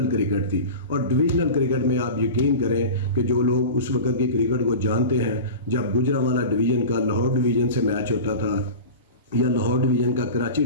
کرکٹ تھی، اور ڈویژنل کرکٹ میں آپ یقین کریں کہ جو لوگ اس وقت کی کرکٹ کو جانتے ہیں، جب گجرانوالہ ڈویژن کا لاہور ڈویژن سے میچ ہوتا تھا یا لاہور ڈویژن کا کراچی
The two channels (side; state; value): both; inverted; correlation -0.31